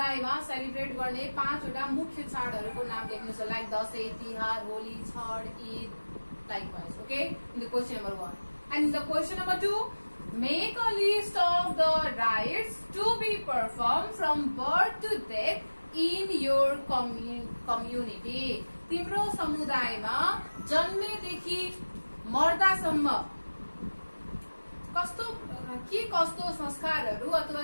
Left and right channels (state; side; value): inverted; both; correlation -1.00